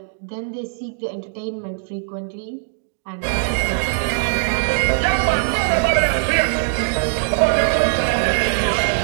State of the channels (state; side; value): silent; left; digital silence